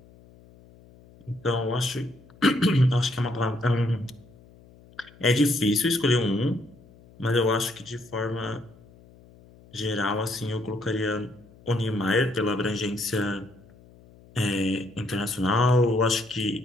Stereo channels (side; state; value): left; noise; hum, 25 dB below the sound